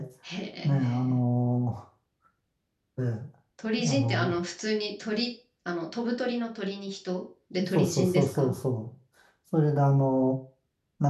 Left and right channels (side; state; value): both; identical; correlation 1.00